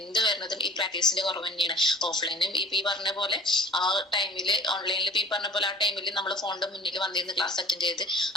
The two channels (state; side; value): normal; both; correlation 0.47